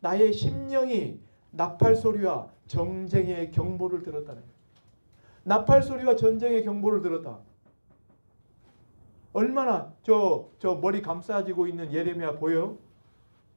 나의 심령이 나팔소리와 전쟁의 경보를 들었다는 거예요. 나팔소리와 전쟁의 경보를 들었다. 얼마나 저 머리 감싸지고 있는 예레미야 보여요?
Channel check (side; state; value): both; inverted; correlation -1.00